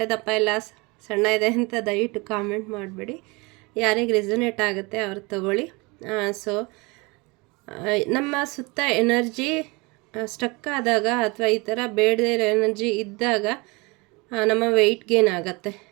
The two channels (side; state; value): left; quieter; 26.3 dB